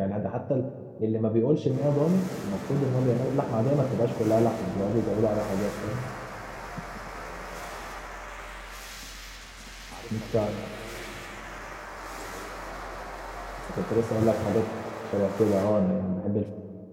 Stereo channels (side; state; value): both; identical; correlation 1.00